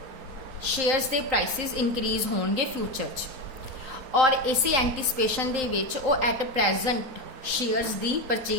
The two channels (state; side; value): late; left; 3.9 ms